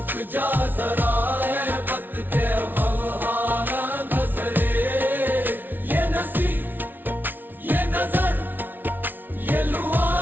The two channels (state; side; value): late; left; 0.090 ms